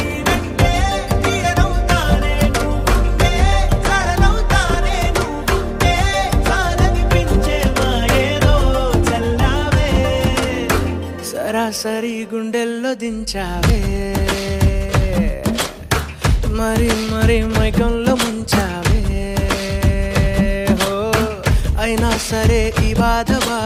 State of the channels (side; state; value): both; identical; correlation 1.00